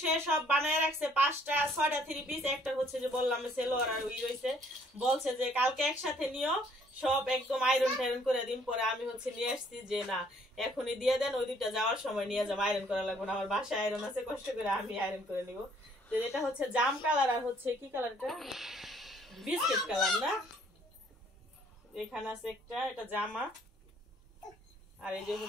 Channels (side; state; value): both; normal; correlation 0.63